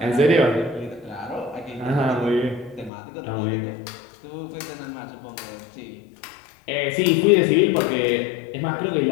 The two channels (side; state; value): right; drops out; at 2.9 s